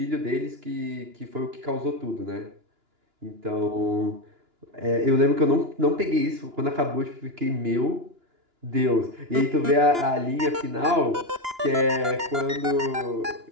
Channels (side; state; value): left; late; 2.9 ms